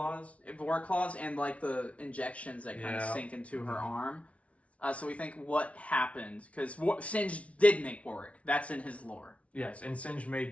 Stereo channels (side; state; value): right; late; 0.064 ms